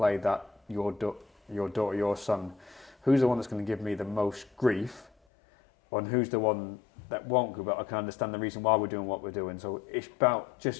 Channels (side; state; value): right; drops out; at 5.1 s